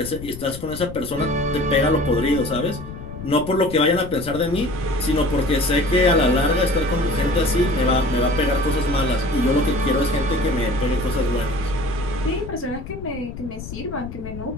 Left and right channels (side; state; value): left; noise; rumble, 11 dB below the sound